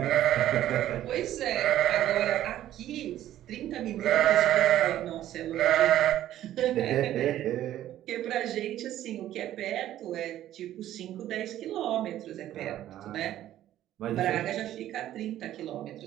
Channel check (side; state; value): left; quieter; 12.8 dB